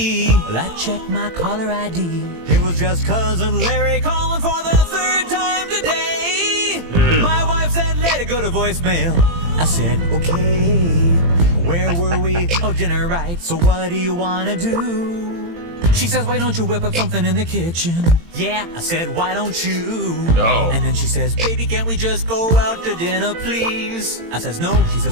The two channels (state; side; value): late; left; 18 ms